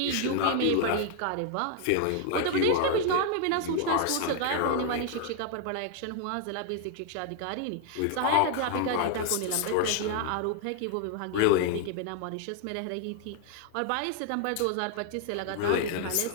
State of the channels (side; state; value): both; different; correlation 0.00